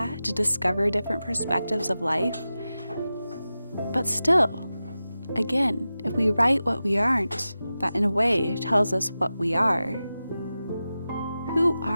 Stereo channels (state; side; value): inverted; both; correlation -0.94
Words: to discover different perspectives of life. But still, again, if we write what we aren't, that in a way tells us what we are. Who